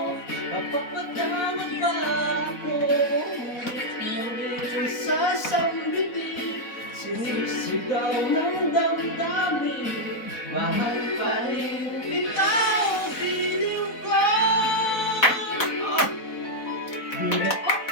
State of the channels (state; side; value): late; right; 4.1 ms